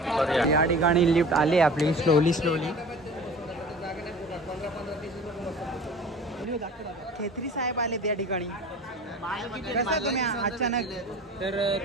या ठिकाणी लिफ्ट आली आपली स्लोली. खेत्री साहेब आले त्या ठिकाणी. कसं तुम्ही अचानक? तर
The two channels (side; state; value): both; normal; correlation 0.40